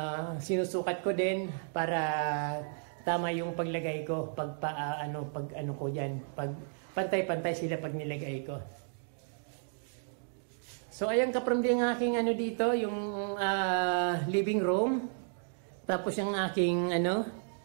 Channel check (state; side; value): silent; left; digital silence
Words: Sinusukat ko din para tama yung paglagay ko. Pag ko dyan. Pag pantay-pantay sila pag nilagay ko. So ayan kaprimdi ang aking dito, yung living room. Tapos yung aking